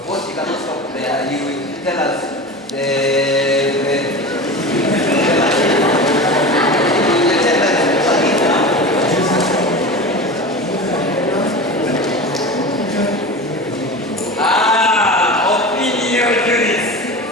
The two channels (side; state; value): both; normal; correlation 0.30